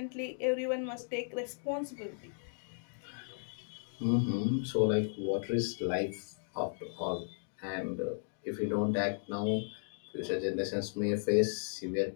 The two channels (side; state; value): right; silent; digital silence